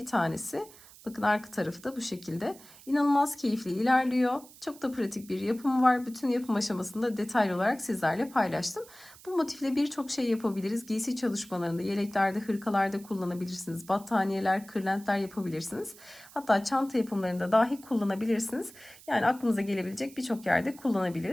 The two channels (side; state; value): right; noise; hiss, 21 dB below the sound